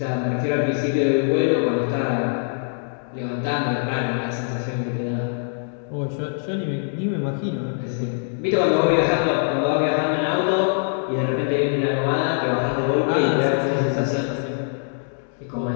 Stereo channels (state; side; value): silent; right; 63 dB below the other